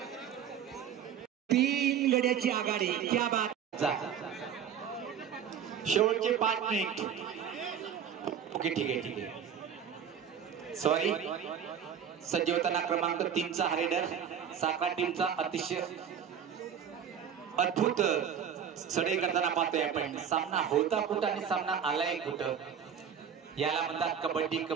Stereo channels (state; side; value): quieter; left; 8.1 dB